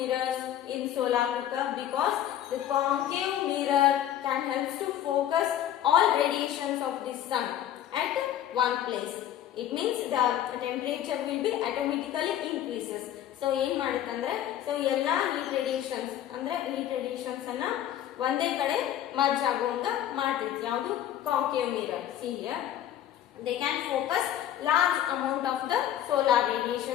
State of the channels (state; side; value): quieter; right; 11.3 dB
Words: in solar cooker? Because the concave mirror can help to focus all radiations of the sun at one place. It means the temperature will be automatically increases. So ಏನು ಮಾಡುತ್ತಂದ್ರೆ so ಎಲ್ಲ heat radiations ಅಂದ್ರೆ heat radiations ಅನ್ನ ಒಂದೇ ಕಡೆ merge ಆಗುವಂಗ ಮಾಡ್ತೈತಿ. ಯಾವುದು? concave mirror. See here, they can focus large amount of the solar